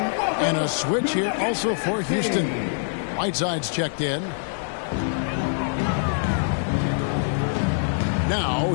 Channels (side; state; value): right; silent; 56 dB below the other